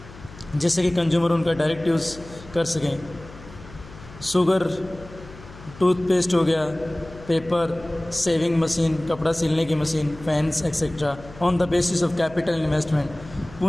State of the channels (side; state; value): left; noise; hum, 18 dB below the sound